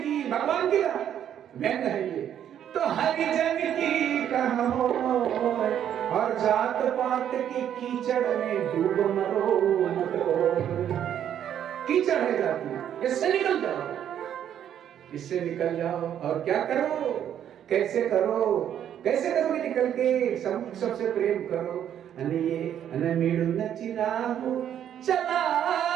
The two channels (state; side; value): quieter; left; 9.9 dB